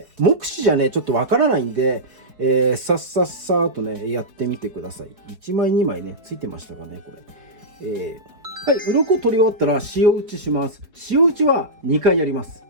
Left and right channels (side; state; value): left; late; 4.6 ms